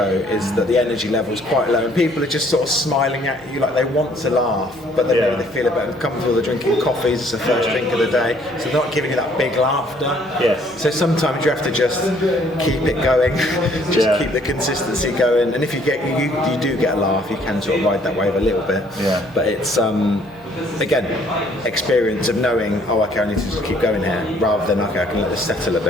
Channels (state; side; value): noise; right; hum, 25 dB below the sound